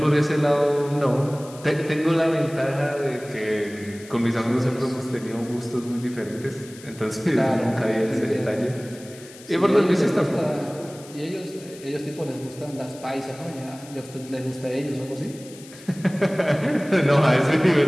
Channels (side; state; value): left; noise; hiss, 20 dB below the sound